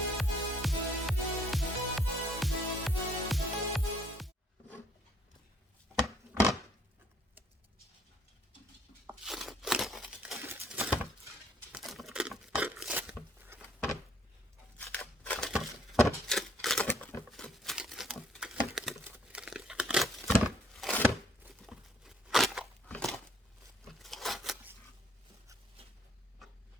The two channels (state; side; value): normal; both; correlation 0.64